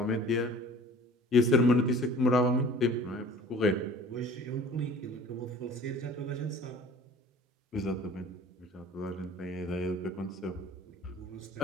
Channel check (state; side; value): normal; both; correlation 0.46